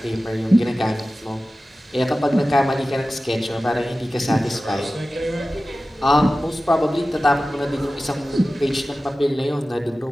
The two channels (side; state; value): both; normal; correlation 0.95